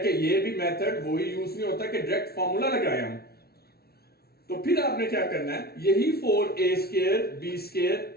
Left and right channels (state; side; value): late; right; 0.45 ms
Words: कि ये भी मेथड वही यूज नहीं होता कि डायरेक्ट फॉर्मूला लगाए हम। तो फिर आपने क्या करना है, यही 4a स्क्वायर b